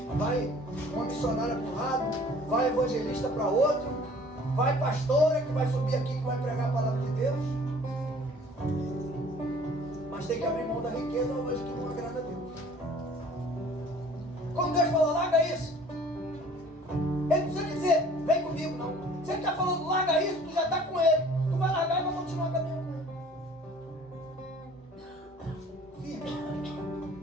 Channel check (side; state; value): both; normal; correlation 0.51